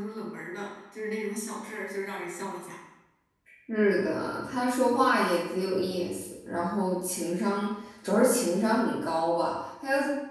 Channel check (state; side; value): identical; both; correlation 1.00